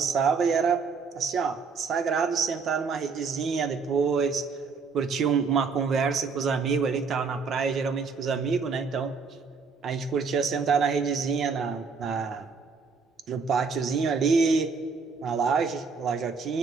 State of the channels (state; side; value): quieter; left; 5.1 dB